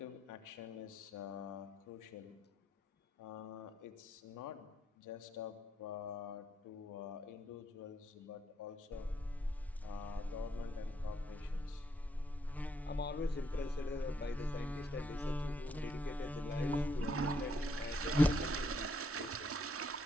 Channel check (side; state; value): both; normal; correlation 0.75